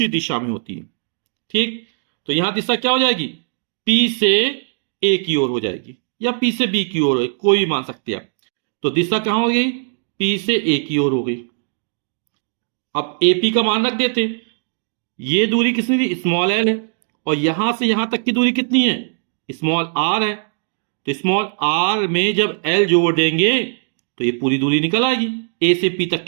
दिशा में होती है, ठीक। तो यहां दिशा क्या हो जाएगी, पी से ए की ओर हो जाएगी या पी से बी की ओर, कोई भी मान सकते हैं आप। तो दिशा कहां हो गई, पी से ए की ओर हो गई। अब एपी का मान रख देते हैं, ये दूरी कितनी थी, स्मॉल एल है, और यहां से यहां तक की दूरी कितनी है, स्मॉल आर है। तो स्मॉल आर में जब एल जोड़ देंगे तो ये पूरी दूरी निकल आएगी, ए से पी तक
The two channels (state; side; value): silent; left; digital silence